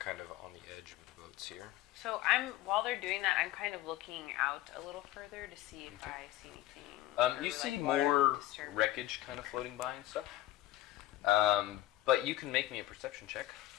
of on the edge of the boats here. So while they're doing that, I'm kind of looking out a little further to see if I see anything. or, You see like, more water disturbance. wreckage kind of floating by and stuff. But you can make me a perception check.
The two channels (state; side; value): quieter; right; 15.4 dB